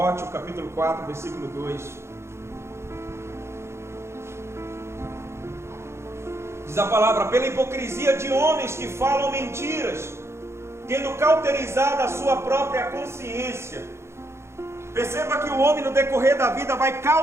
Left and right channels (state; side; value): late; left; 0.13 ms